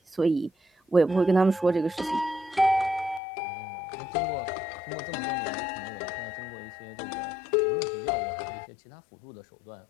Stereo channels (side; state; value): right; drops out; at 3.2 s